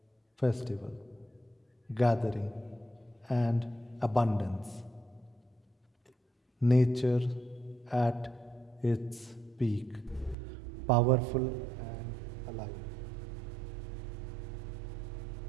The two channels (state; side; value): drops out; left; at 10.4 s